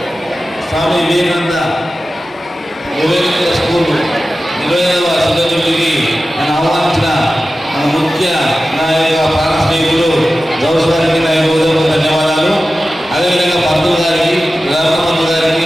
స్వామి వివేకానంద స్కూల్ 25వ శతాబ్దికి నన్ను ఆహ్వానించిన మన ముఖ్య నాయక ప్రాణ స్నేహితులు గౌస్ గారికి నా ధన్యవాదాలు. అదేవిధంగా పంతులు గారికి, రామపంతు గారికి,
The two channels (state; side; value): normal; both; correlation 0.94